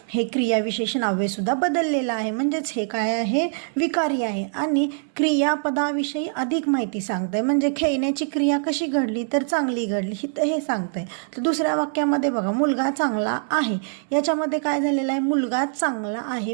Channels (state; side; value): silent; left; 63 dB below the other